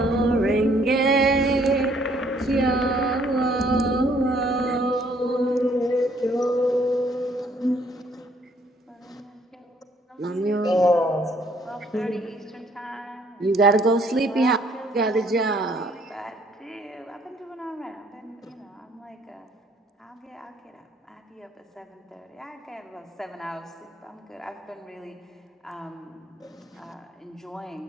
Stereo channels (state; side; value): normal; both; correlation 0.63